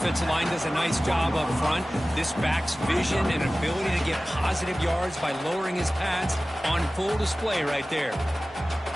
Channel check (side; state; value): both; normal; correlation 0.97